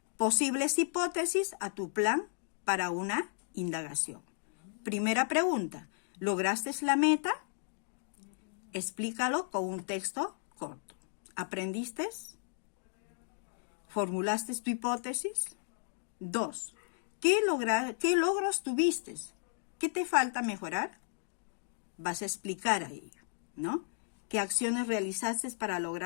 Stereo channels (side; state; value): right; silent; digital silence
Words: posibles hipótesis a tu plan para una indagación. Primera pregunta. ¿Lograste la meta? Explícalo con un texto corto. ¿Aprendiste? ¿Formulaste tu hipótesis? 2. ¿Qué logros tuviste? ¿Qué te falta mejorar? Vas a explicar ahí, ¿no? ¿Qué acciones realizaste para